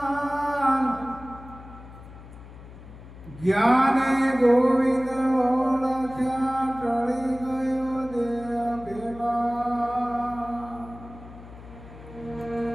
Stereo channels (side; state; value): left; noise; hum, 17 dB below the sound